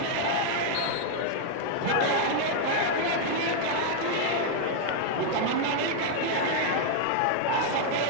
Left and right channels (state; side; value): different; both; correlation -0.01